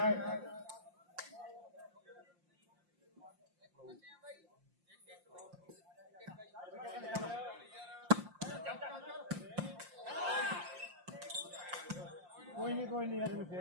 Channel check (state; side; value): late; left; 5.7 ms